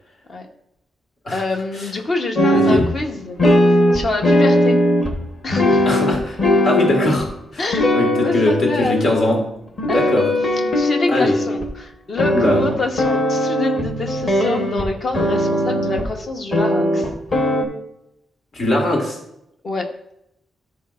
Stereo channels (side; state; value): both; normal; correlation 0.75